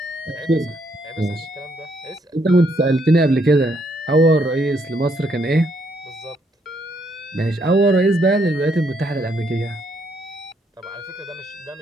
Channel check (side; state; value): both; normal; correlation 0.73